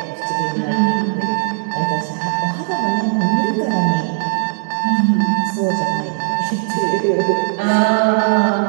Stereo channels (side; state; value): left; silent; digital silence